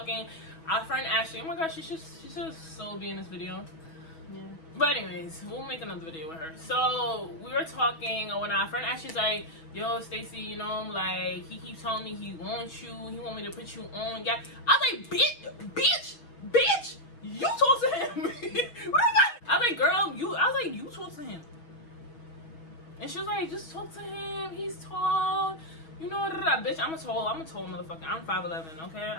our friend Ashley, oh my gosh, she should so be in this video. Yeah. But anyways, we'll make another video with her. So we were talking when our friend Ashley's like, yo, Stacy, you know, like he keeps telling me he wants you, he want me to put you on. Yeah. I was like, bitch, you talk to him. What I was like, girl, you talk to him. And she was like, just talk to him. He's tall. You know, bitch, I'm a tall motherfucker. I'm 5'11", okay?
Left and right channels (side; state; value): right; late; 6.2 ms